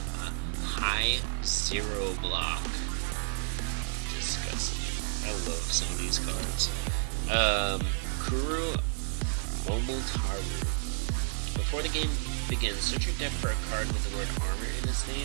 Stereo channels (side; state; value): left; silent; 57 dB below the other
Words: High 0 block. Disgusting. I love some of these cards. Kuru Momotaru. Before the game begins, search your deck for a card with the word armor in its